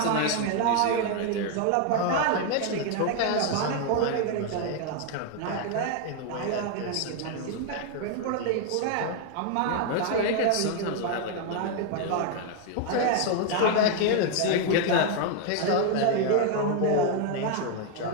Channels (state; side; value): different; both; correlation 0.01